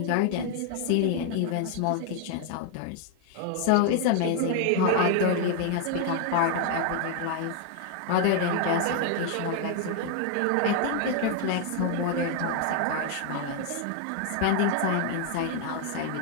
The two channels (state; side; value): different; both; correlation 0.00